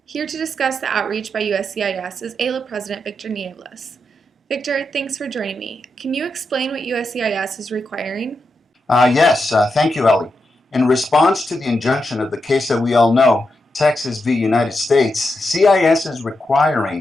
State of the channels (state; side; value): normal; both; correlation 0.86